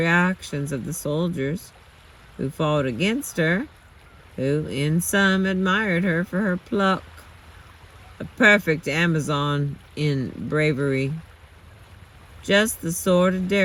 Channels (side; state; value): both; identical; correlation 1.00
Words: of the soldiers who fought against her, who in some admired her for her pluck, a perfect Amazon in bravery, just the sort of